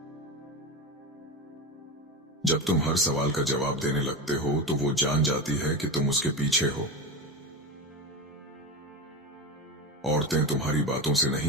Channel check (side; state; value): both; normal; correlation 0.22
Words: जब तुम हर सवाल का जवाब देने लगते हो तो वो जान जाती है कि तुम उसके पीछे हो। औरतें तुम्हारी बातों से